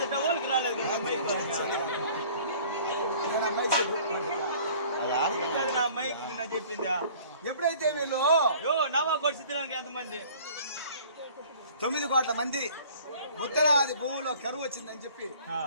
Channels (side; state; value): both; inverted; correlation -0.50